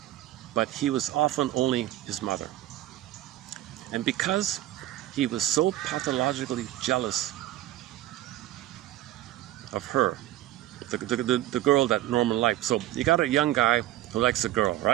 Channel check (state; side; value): quieter; left; 14.6 dB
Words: but he was often only his mother. And because he was so pathologically jealous of her, the girl that Norman liked. So you got a young guy who likes a girl,